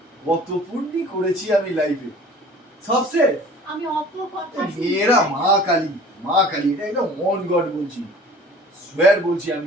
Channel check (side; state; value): both; normal; correlation 0.47